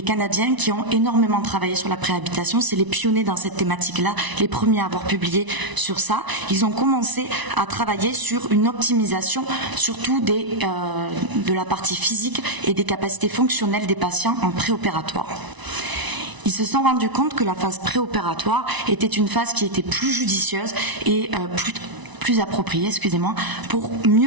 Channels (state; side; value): late; left; 1.0 ms